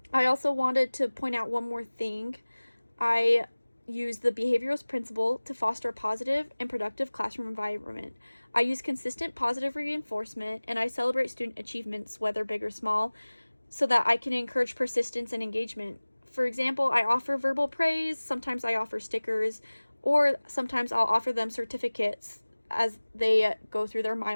I also wanted to point out one more thing. I use the behavioralist principle to foster a positive and productive classroom environment. I use consistent positive reinforcement, and I celebrate student achievements, whether big or small, so that I can encourage persistence and engagement. For example, I offer verbal praise, sometimes I offer stickers, or sometimes I'll offer them certificates as they go through their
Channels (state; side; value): inverted; both; correlation -1.00